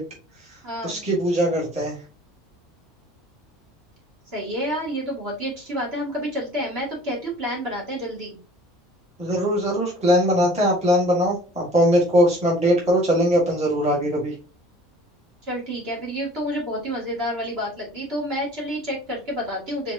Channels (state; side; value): normal; both; correlation 0.49